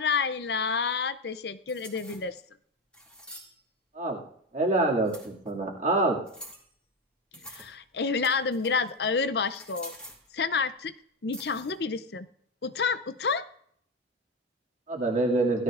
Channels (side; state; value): both; normal; correlation 0.16